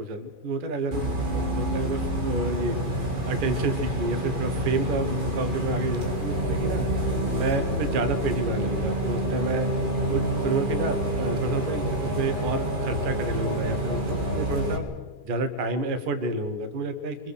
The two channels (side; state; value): left; late; 2.4 ms